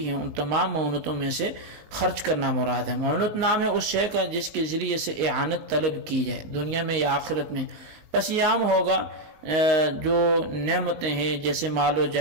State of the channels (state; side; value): late; left; 19 ms